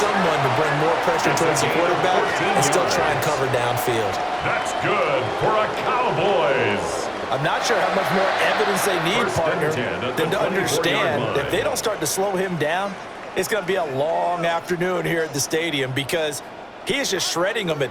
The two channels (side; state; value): both; identical; correlation 1.00